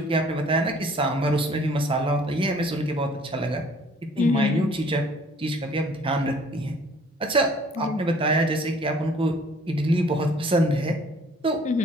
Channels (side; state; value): both; normal; correlation 0.56